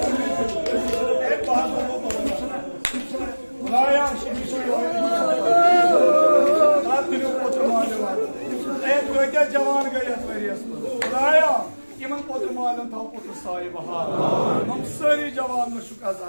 Cavan gayet veriyorsun. Buraya kimin potu malın tam potu sahibi ha. Nam sarı cavanlı şu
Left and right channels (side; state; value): both; inverted; correlation -1.00